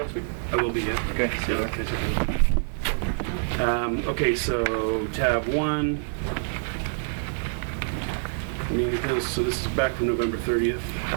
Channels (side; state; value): left; silent; 61 dB below the other